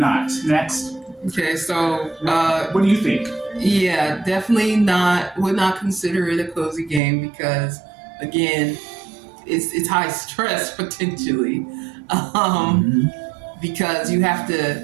Next. Okay, so what do you think? Yeah, definitely not. Would not consider it a cozy game because, again, it's high stress potentially. Because you have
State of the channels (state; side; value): drops out; left; at 7.0 s